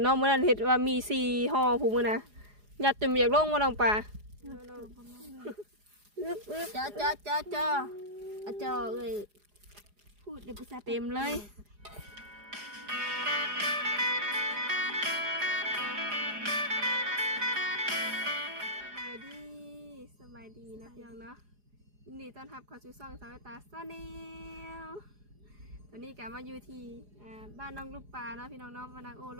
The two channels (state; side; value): late; left; 4.9 ms